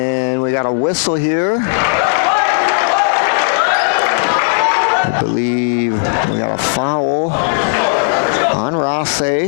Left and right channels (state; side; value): silent; right; digital silence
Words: we got a whistle here. I believe we got a foul on